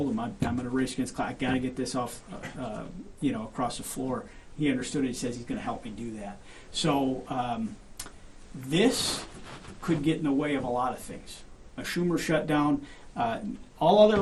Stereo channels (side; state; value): both; identical; correlation 1.00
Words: him I'm going to race against clock. I got to get this off, across the floor. He understood it. He says he's going to help me do that. So this could get in the way of a lot of things. A Schumer shutdown, all other